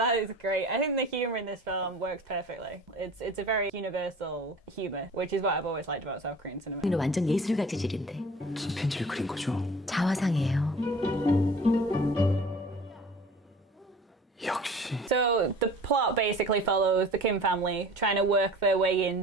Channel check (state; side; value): normal; both; correlation 0.43